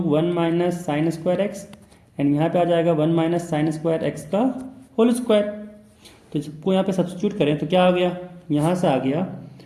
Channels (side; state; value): both; identical; correlation 1.00